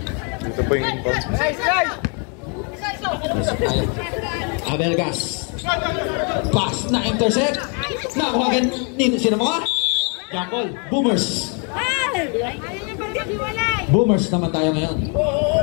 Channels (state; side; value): quieter; right; 37.2 dB